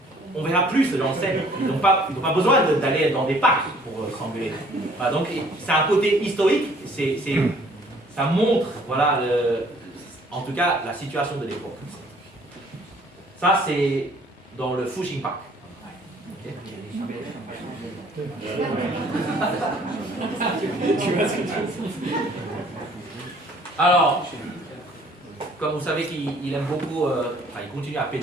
on verra plus dans le scène. Ils n'ont pas besoin d'aller dans des parcs pour s'engueuler. Voilà, donc c'est un côté historique. Ça montre, voilà, en tout cas, la situation de l'époque. Ça, c'est dans le Fuxing Park. Alors, comme vous savez qu'il aime beaucoup, il continue à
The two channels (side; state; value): both; normal; correlation 0.57